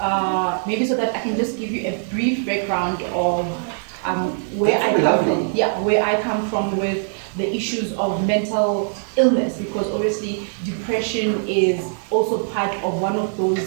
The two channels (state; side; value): silent; left; 61 dB below the other